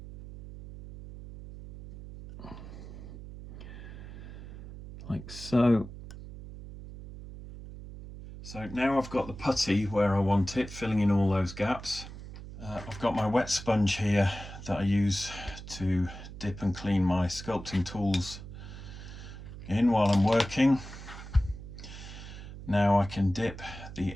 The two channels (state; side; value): noise; right; hum, 12 dB below the sound